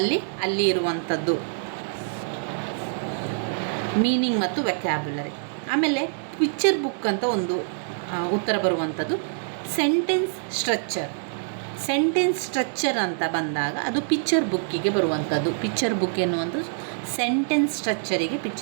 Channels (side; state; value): left; silent; digital silence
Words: ಇರುವಂಥದ್ದು ಮೀನಿಂಗ್ ಮತ್ತು ವೊಕ್ಯಾಬ್ಯುಲರಿ. ಆಮೇಲೆ ಪಿಕ್ಚರ್ ಬುಕ್ ಅಂತ ಒಂದು ಉತ್ತರ ಬರುವಂಥದ್ದು. ಸೆಂಟೆನ್ಸ್ ಸೆಂಟೆನ್ಸ್ ಸ್ಟ್ರಕ್ಚರ್ ಅಂತ ಬಂದಾಗ ಅದು ಪಿಕ್ಚರ್ ಬುಕ್ಕಿಗೆ ಬರುವಂಥದ್ದು. ಪಿಕ್ಚರ್ ಬುಕ್ ಎನ್ನುವಂಥದ್ದು ಸೆಂಟೆನ್ಸ್ ಸ್ಟ್ರಕ್ಚರಿಗೆ